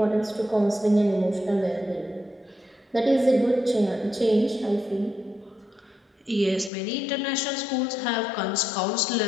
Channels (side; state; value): right; drops out; at 6.7 s